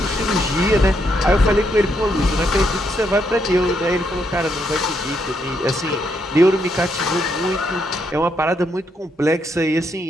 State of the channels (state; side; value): normal; both; correlation 0.77